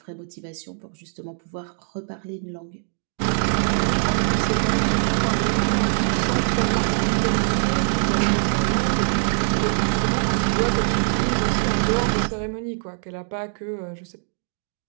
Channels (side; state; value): left; silent; digital silence